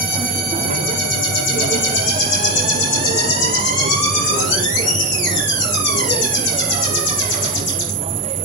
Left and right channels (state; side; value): normal; both; correlation 0.12